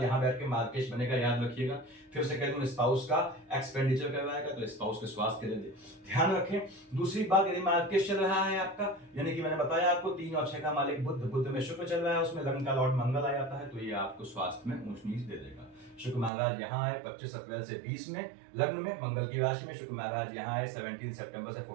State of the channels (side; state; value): left; drops out; at 16.3 s